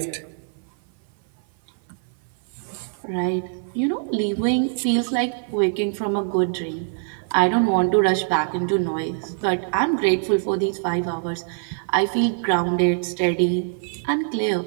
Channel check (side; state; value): left; silent; 56 dB below the other